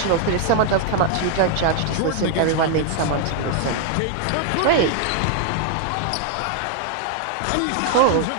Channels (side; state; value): both; different; correlation 0.00